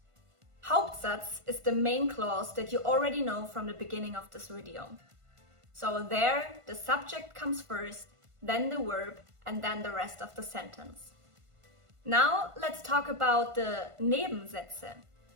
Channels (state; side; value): late; left; 1.5 ms